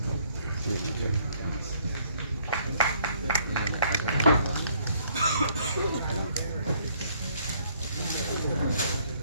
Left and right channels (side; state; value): both; inverted; correlation -0.65